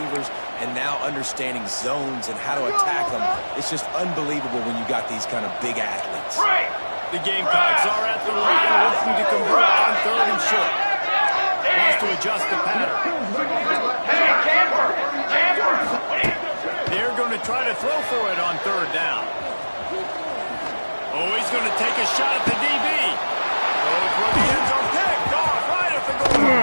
and now understanding zones and how to attack them. It's just unbelievable when you got these kind of big athletes. The Gamecocks are at the line looking to convert on third and short. Wants to adjust the pattern. They're going to try to throw for it on third down. Oh, he's going to take a shot at the DB. Goes for the end zone, picked off right at the goal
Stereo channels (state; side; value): inverted; both; correlation -1.00